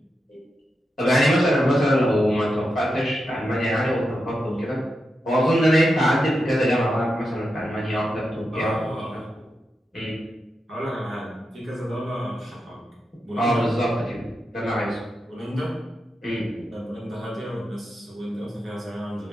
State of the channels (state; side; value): normal; both; correlation 0.87